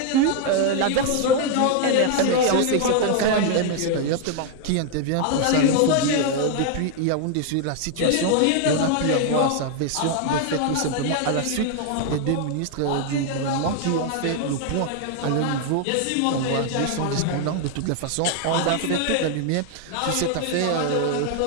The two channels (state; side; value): different; both; correlation 0.00